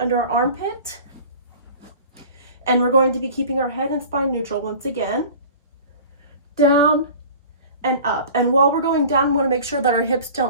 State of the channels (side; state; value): both; inverted; correlation -0.41